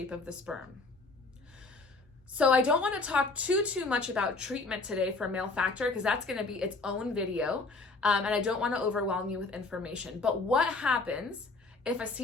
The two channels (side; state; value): right; quieter; 3.6 dB